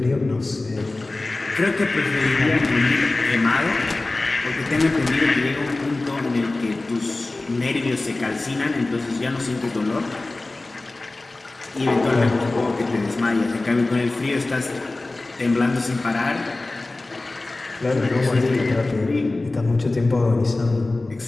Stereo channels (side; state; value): right; quieter; 3.1 dB